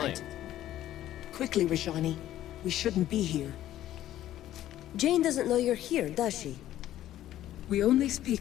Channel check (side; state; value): right; quieter; 13.0 dB